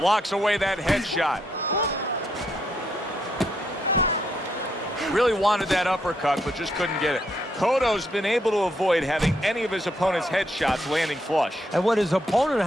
away that headshot. Really wanted that uppercut, but just couldn't get it. Cotto's been able to avoid having any of his opponent's headshots landing flush. And what his opponent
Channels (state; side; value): normal; both; correlation 0.76